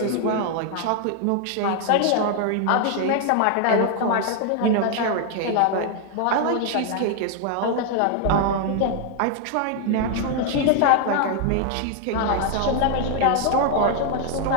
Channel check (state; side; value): different; both; correlation 0.00